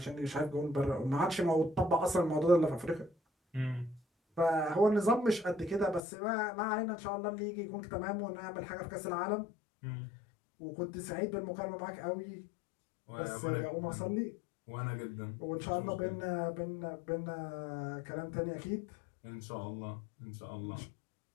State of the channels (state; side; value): drops out; right; at 6.0 s